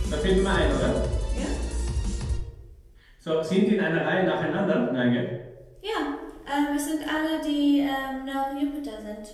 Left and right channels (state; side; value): identical; both; correlation 1.00